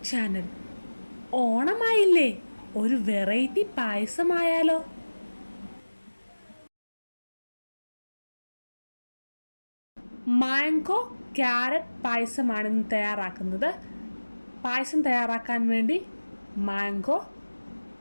channel. ഓണമായില്ലേ, ഒരു variety പായസമായാലോ? Mango carrot പായസമാണ് ഇന്ന് തയ്യാറാക്കുന്നത്. പായസം തയ്യാറാക്കാൻ വേണ്ടി മാംഗോ,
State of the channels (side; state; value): both; inverted; correlation -1.00